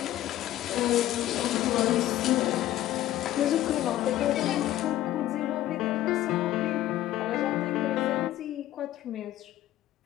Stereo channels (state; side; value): quieter; right; 13.9 dB